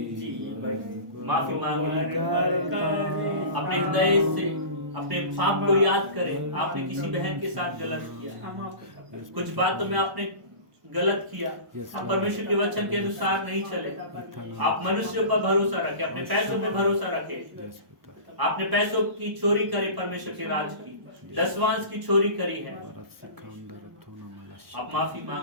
जीवन माफी मांगे, अपने हृदय से अपने पाप को याद करें। आपने किसी बहन के साथ गलत किया, कुछ बातों में आपने गलत किया, आप परमेश्वर के वचन के अनुसार नहीं चले, आप मनुष्यों पर भरोसा रखे, अपने पैसों पे भरोसा रखे, आपने पैसों की चोरी करी, परमेश्वर के राज की दसवांश की चोरी करी है, आप माफी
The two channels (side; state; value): left; late; 1.0 ms